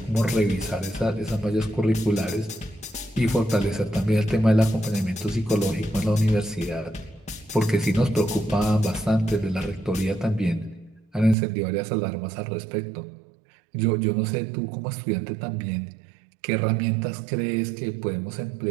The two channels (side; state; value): left; drops out; at 11.4 s